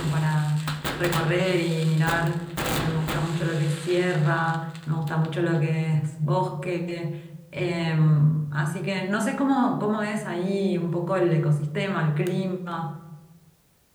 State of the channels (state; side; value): identical; both; correlation 1.00